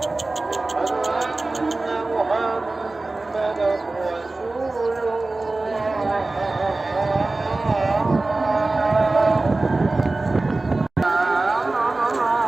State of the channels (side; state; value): left; quieter; 3.2 dB